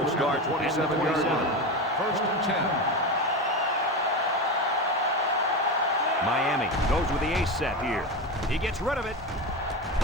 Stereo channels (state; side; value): normal; both; correlation 0.20